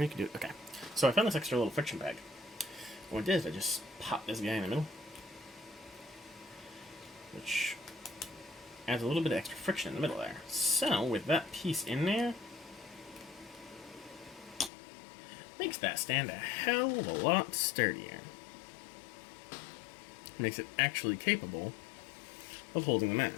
you can do it. Okay. So I found this extra little friction peg. What I did is I just popped this guy in the middle, which adds a little bit of extra friction in the middle there. So, with that piece in there, makes that stand a hell of a lot sturdier. Makes it actually capable of holding the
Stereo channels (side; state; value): right; drops out; at 14.7 s